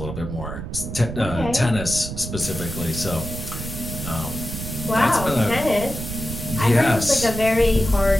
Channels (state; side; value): noise; right; rumble, 7 dB below the sound